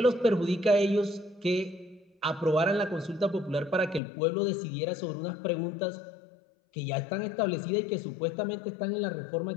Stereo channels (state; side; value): drops out; right; at 4.0 s